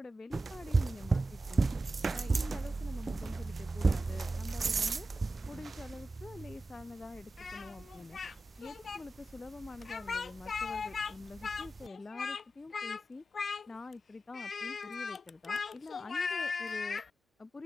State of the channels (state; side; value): normal; both; correlation 0.92